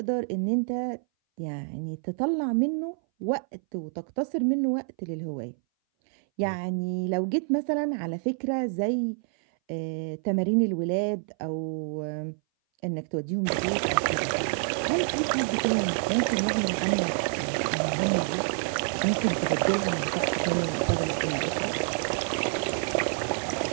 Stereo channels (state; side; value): silent; left; 58 dB below the other